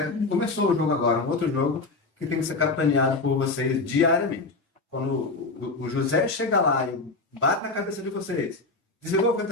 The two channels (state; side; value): quieter; right; 3.6 dB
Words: Começou o jogo agora, um outro jogo que tem que ser capitaneado por vocês diariamente. Quando o José chega lá e bate na cabeça de vocês, desligou o